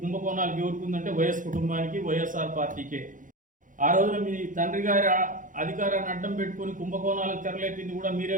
కుంభకోణాలకు ఎవరుకుందంటే వైఎస్ కుటుంబానికి, వైఎస్ఆర్ పార్టీకే. ఆ రోజున మీ తండ్రి గారి అధికారాన్ని అడ్డం పెట్టుకుని కుంభకోణాలకు తెరలేపింది కూడా మీరే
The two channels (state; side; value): late; left; 0.38 ms